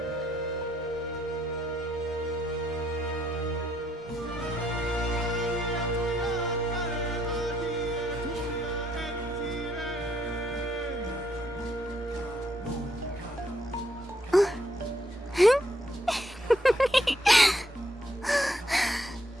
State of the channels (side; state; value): both; normal; correlation 0.73